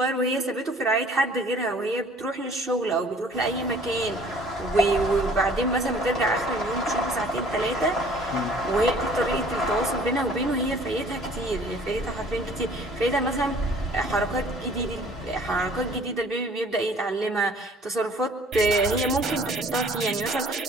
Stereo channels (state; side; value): normal; both; correlation 0.53